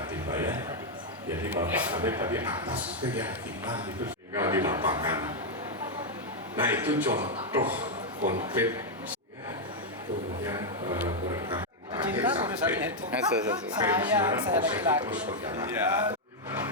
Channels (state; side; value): normal; both; correlation -0.01